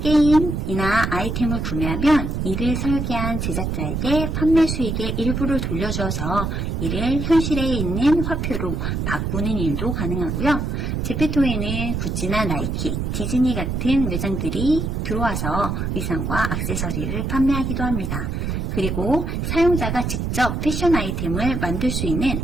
아이템을 구매하면 이를 설계한 제작자에게 판매 수익의 일부를 돌려줘서 이를 현실에 있는 화폐로 바꾸는 일도 가능하고요. 제페토에는 구찌나 나이키, 디즈니 같은 매장들이 들어와서 의상과 액세서리를 판매하기도 합니다. 그리고 사용자가 직접 패션 아이템을 만들 수 있는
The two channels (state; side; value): noise; right; rumble, 2 dB below the sound